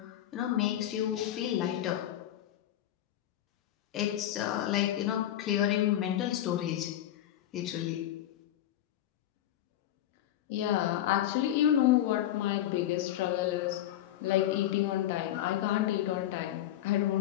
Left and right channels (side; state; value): right; quieter; 12.4 dB